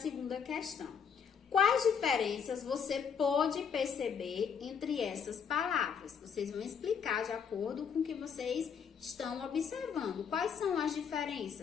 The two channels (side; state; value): right; quieter; 6.9 dB